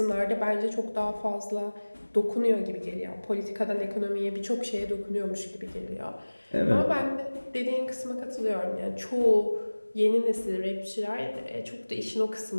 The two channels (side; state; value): both; inverted; correlation -1.00